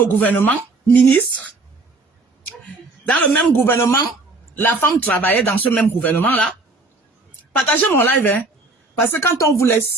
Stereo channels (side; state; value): left; quieter; 3.3 dB